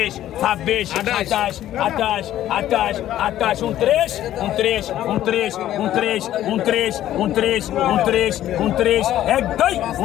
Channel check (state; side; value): quieter; right; 12.7 dB